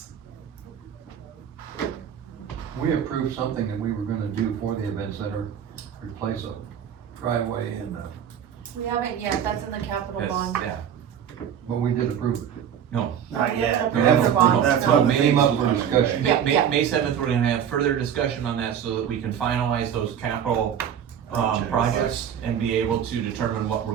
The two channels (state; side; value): quieter; left; 8.8 dB